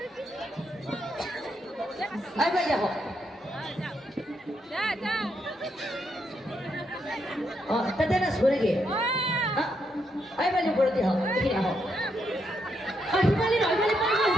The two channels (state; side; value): normal; both; correlation 0.79